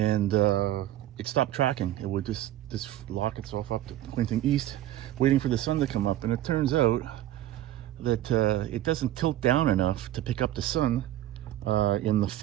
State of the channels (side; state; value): left; quieter; 13.7 dB